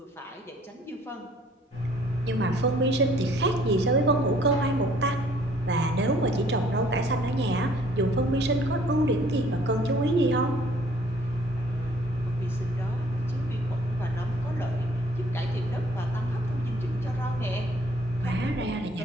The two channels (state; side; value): normal; both; correlation 0.59